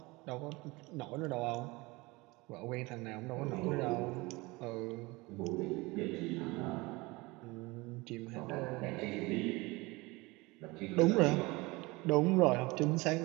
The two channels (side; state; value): left; quieter; 23.2 dB